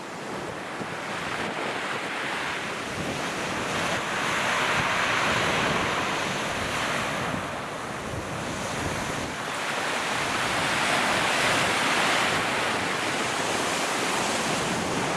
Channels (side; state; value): both; identical; correlation 1.00